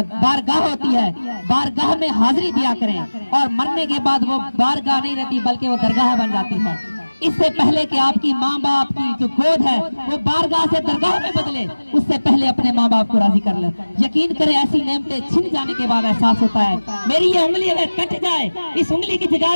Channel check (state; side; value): inverted; both; correlation -1.00